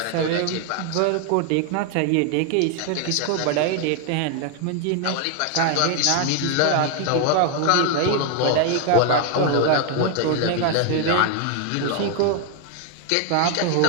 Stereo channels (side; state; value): both; different; correlation 0.01